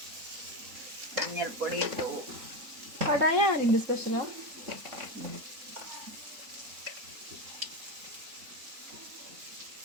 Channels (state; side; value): late; left; 3.7 ms